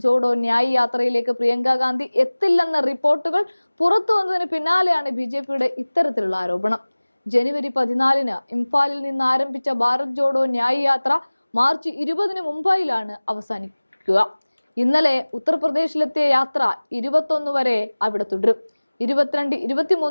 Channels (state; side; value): inverted; both; correlation -1.00